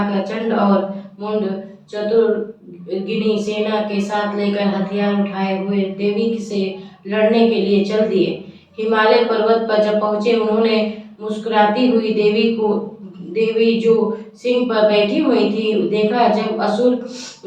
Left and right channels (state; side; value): identical; both; correlation 1.00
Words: चंड और मुंड चतुर्गिनी सेना के साथ लेकर हथियार उठाए हुए देवी से लड़ने के लिए चल दिए। हिमालय पर्वत पर जब पहुंचे, उन्होंने मुस्कुराती हुई देवी जो सिंह पर बैठी हुई थी देखा। जब असुर